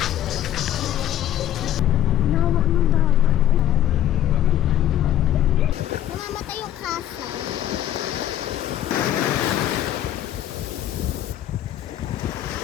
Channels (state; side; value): quieter; right; 11.8 dB